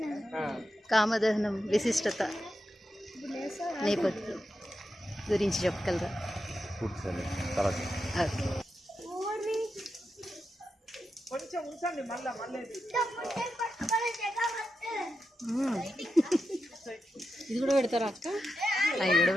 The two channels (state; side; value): normal; both; correlation 0.88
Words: కామదహనం విశిష్టత నేపథ్యం గురించి చెప్పగలరా? ఓకే. ఇది కూడా పెడతారా అక్క? అవి కూడా